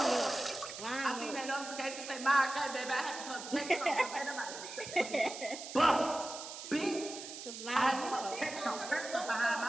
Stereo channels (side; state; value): right; noise; hiss, 10 dB below the sound